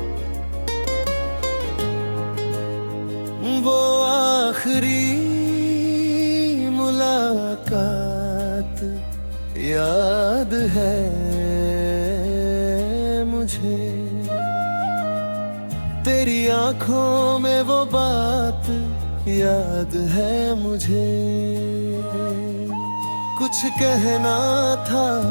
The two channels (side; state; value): both; inverted; correlation -1.00